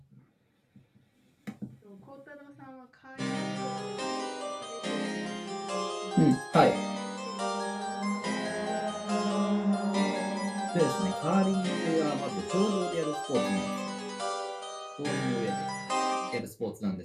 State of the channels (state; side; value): identical; both; correlation 1.00